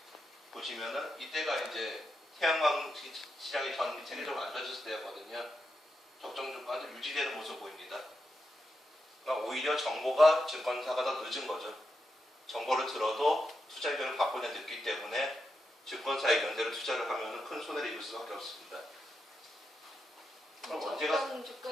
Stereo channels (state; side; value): normal; both; correlation 0.86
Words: 보시면은 이때가 이제 태양광 시장이 전 세계적으로 안 좋아졌을 때였거든요. 적정 주가도 유지되는 모습 보입니다. 그러니까 오히려 정보가 증권사가 더 늦은 거죠. 정보를 들어도 투자 의견을 바꾸냐 늦기 때문에 증권사 의견대로 투자를 하면 큰 손해를 입을 수밖에 없습니다. 그럼 적정